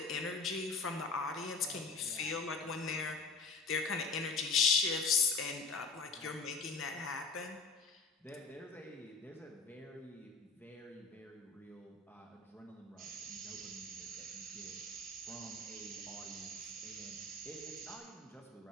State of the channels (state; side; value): quieter; right; 4.3 dB